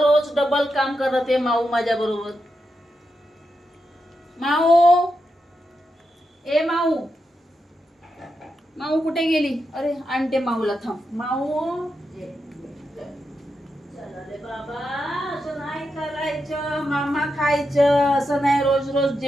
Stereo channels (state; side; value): normal; both; correlation 0.86